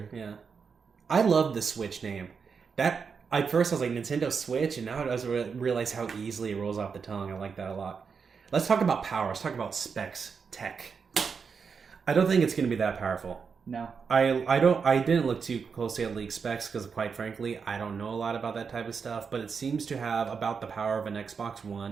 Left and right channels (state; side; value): quieter; left; 5.8 dB